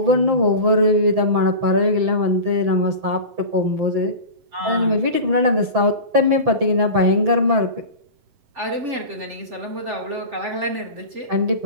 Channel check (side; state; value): left; late; 7.7 ms